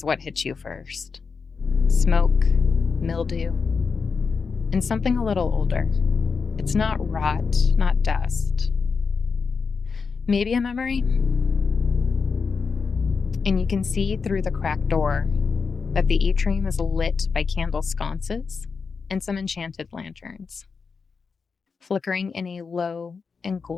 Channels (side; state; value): right; quieter; 5.2 dB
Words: what hits you first. Smoke, mildew, and something a little older. It's not rot, not dust. Maybe a memory? And you can see through the cracked door that the atrium is lit by candle sconces and some enchanted lanterns, flickering in a low and